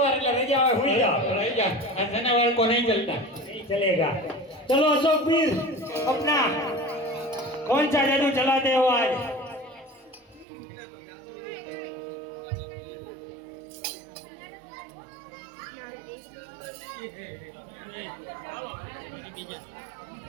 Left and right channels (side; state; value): left; drops out; at 10.5 s